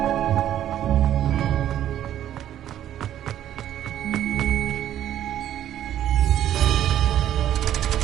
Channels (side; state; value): left; quieter; 11.4 dB